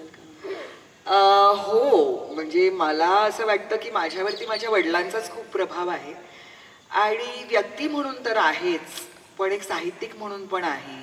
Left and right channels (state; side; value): identical; both; correlation 1.00